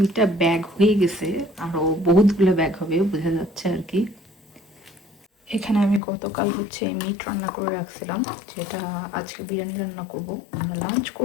ব্যাগ হয়ে গেছে, আরও বহুতগুলো ব্যাগ হবে বোঝা যাচ্ছে আর কি। এখানে আমি গতকাল হচ্ছে মিট রান্না করে রাখছিলাম, যেটা আজকে বিরিয়ানি রান্না করব। আমরা লাঞ্চ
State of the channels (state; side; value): drops out; right; at 6.0 s